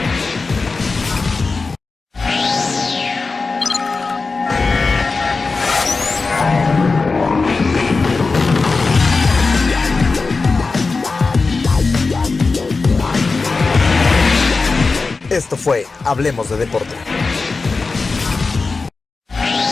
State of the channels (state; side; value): quieter; right; 4.1 dB